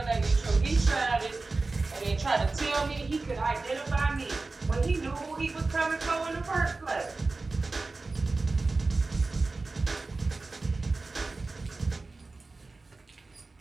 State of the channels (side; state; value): left; quieter; 3.6 dB